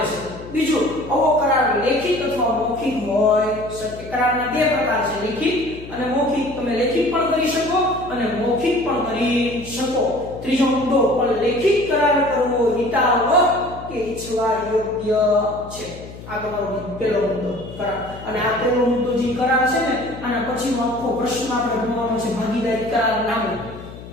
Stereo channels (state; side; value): noise; left; hum, 15 dB below the sound